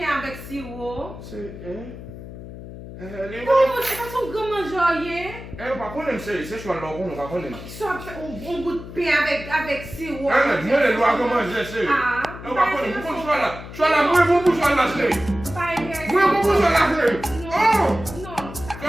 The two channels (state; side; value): noise; left; hum, 13 dB below the sound